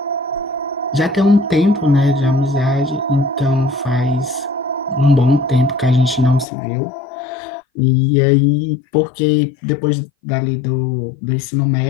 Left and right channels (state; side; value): drops out; right; at 6.5 s